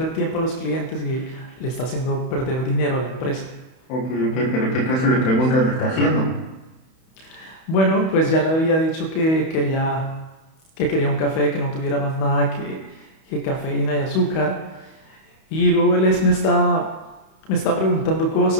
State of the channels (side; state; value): right; late; 31 ms